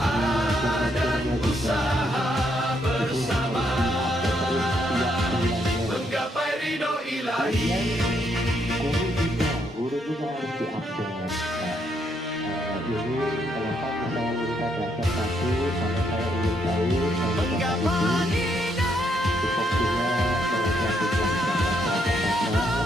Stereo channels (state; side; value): normal; both; correlation 0.75